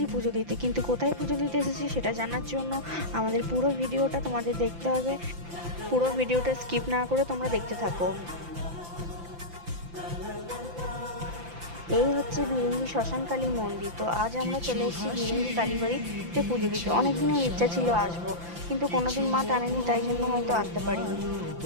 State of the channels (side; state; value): left; late; 5.9 ms